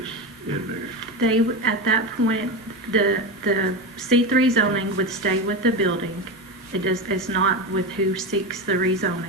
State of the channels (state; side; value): normal; both; correlation 0.19